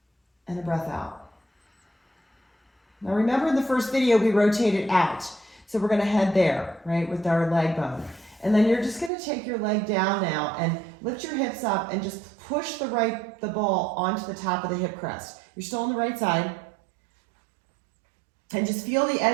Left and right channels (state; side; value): drops out; left; at 9.1 s